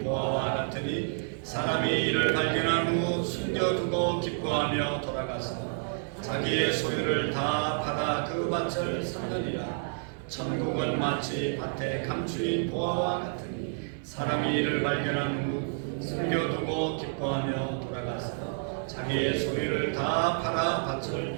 보화와 같으니 사람이 이를 발견한 후 숨겨두고 기뻐하며 돌아가서 자기의 소유를 다 받아 그 밭을 사느니라. 천국은 마치 밭에 감추인 보화와 같으니 사람이 이를 발견한 후 숨겨두고 기뻐하며 돌아가서 자기의 소유를 다 팔아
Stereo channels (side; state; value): left; silent; 58 dB below the other